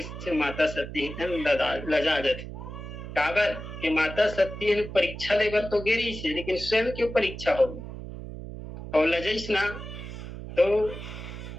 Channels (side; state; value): right; noise; hum, 10 dB below the sound